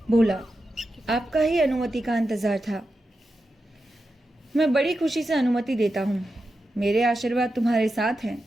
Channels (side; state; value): both; normal; correlation 0.89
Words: बोला, आपका ही अनुमति का इंतजार था। मैं बड़ी खुशी से अनुमति देता हूँ। मेरे आशीर्वाद तुम्हारे साथ हैं।